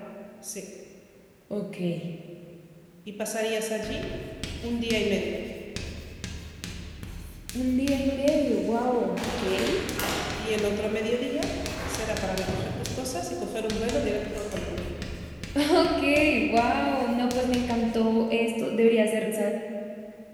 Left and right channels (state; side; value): identical; both; correlation 1.00